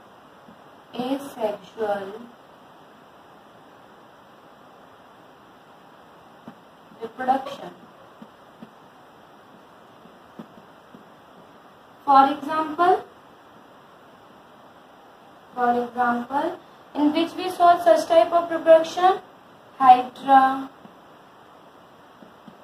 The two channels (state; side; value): identical; both; correlation 1.00